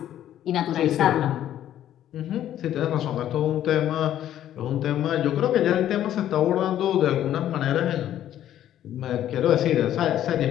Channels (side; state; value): right; quieter; 11.6 dB